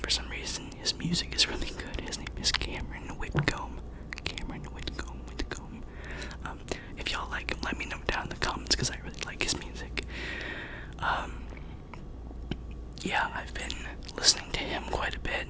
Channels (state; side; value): identical; both; correlation 1.00